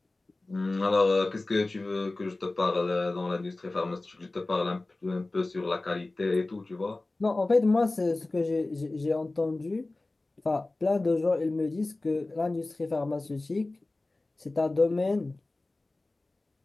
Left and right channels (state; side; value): quieter; right; 3.0 dB